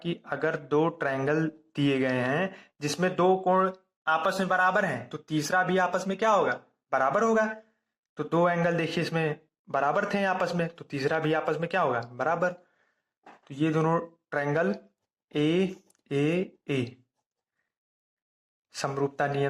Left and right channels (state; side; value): identical; both; correlation 1.00